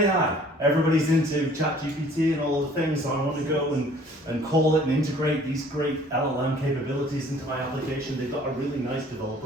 everybody's into ChatGPT and all the things, so I want to go and call it and integrate these great LLM capabilities into my application. They've got a really nice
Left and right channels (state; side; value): normal; both; correlation 0.54